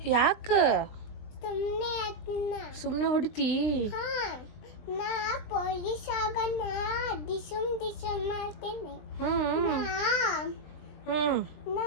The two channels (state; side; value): late; right; 20 ms